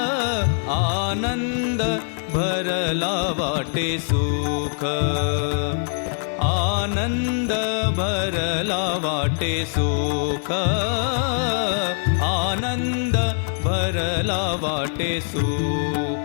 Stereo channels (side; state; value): right; silent; digital silence